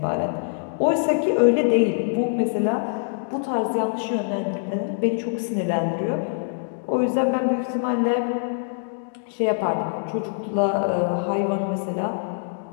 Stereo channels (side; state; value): right; silent; digital silence